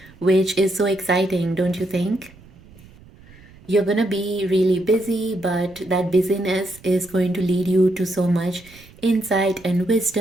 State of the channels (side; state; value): right; noise; rumble, 24 dB below the sound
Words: which is so exciting, don't you think? You're going to be really busy, but that busyness is going to lead you to so much insight and